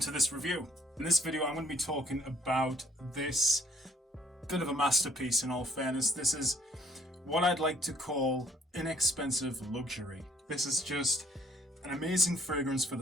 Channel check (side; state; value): both; normal; correlation 0.63